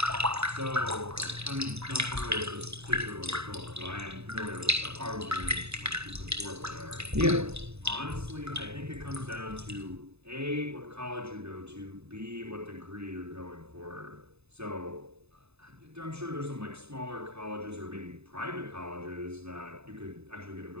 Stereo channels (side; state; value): left; late; 0.80 ms